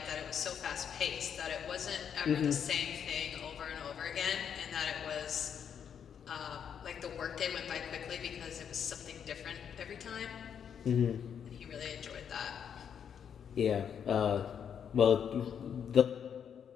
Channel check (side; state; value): right; quieter; 8.0 dB